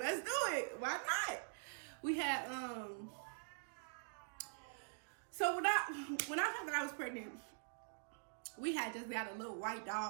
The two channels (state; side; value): silent; left; digital silence